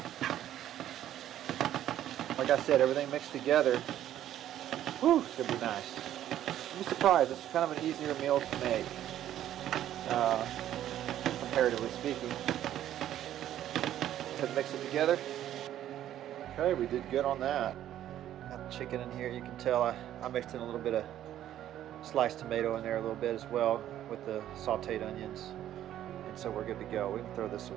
Like I said, everything mixed together. Whew, it's going to be nice. You'll be surprised, it's kind of an easier meal to make, comparatively speaking. Let's mix it together. Okay, we did good on that. Got the chicken in here. You can tell I mixed in a little bit of sliced tomato in there a little bit as well with the sauteed onions. And so we're good to go. We can throw this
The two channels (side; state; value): left; quieter; 11.8 dB